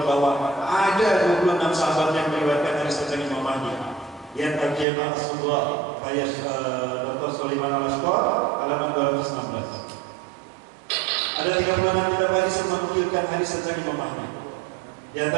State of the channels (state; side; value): drops out; left; at 4.9 s